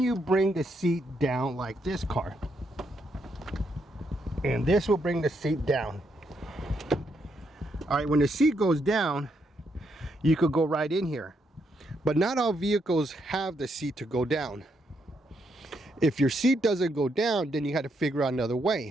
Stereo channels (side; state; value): both; normal; correlation 0.77